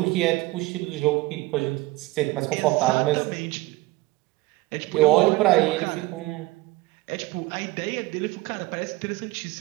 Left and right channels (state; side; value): quieter; left; 20.6 dB